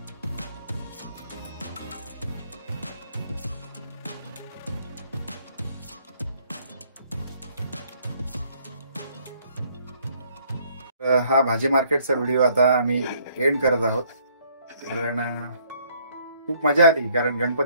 हा भाजी मार्केटचा व्हिडिओ आता आम्ही एंड करत आहोत. कारण खूप मजा आली. कारण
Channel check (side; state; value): both; inverted; correlation -0.64